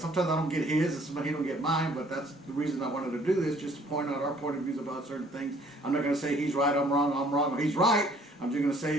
I don't get his, and sometimes he don't get mine, but that's the reason I wanted to do this, just to point out our point of views about certain things. I'm not going to say he's right, I'm wrong, or he's right. I'm just going to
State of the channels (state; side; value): normal; both; correlation 0.58